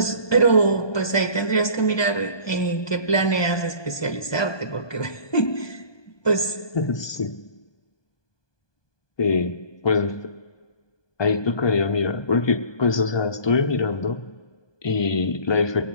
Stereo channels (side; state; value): right; late; 1.2 ms